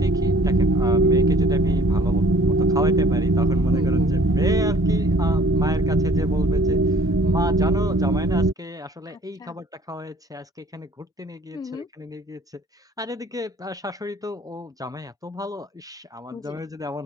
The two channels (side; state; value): both; normal; correlation 0.54